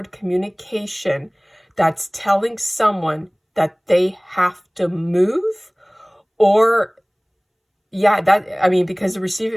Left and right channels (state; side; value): identical; both; correlation 1.00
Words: communication that's telling someone that they have to move, or yeah, because the